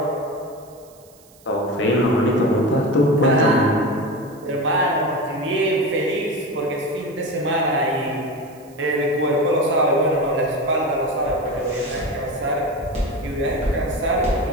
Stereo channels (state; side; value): noise; right; hiss, 27 dB below the sound